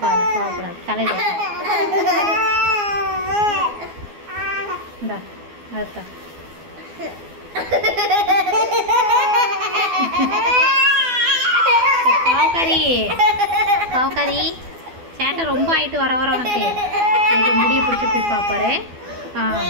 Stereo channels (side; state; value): left; late; 12 ms